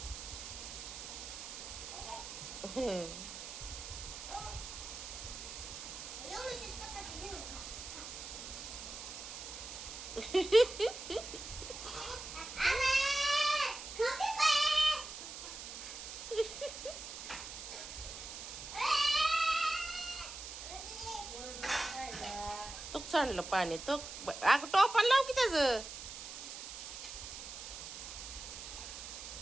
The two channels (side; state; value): right; noise; hiss, 9 dB below the sound